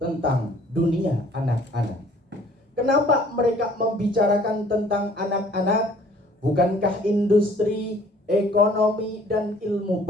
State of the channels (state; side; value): normal; both; correlation 0.56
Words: dunia anak-anak. Kenapa mereka membicarakan tentang anak-anak? Bukankah industri, ekonomi, dan ilmu